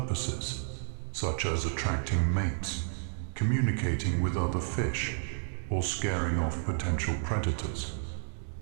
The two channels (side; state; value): left; silent; digital silence